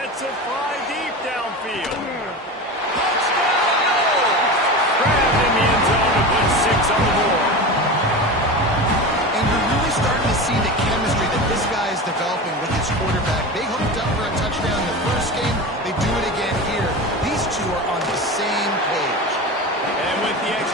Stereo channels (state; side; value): normal; both; correlation 0.27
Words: it fly deep downfield. Touchdown, no! Grabbed in the end zone to put 6 on the board. And you're really starting to see the chemistry that this guy is developing with his quarterback. They hooked up for a touchdown in the first game. They do it again here. These two are on the same page. And with the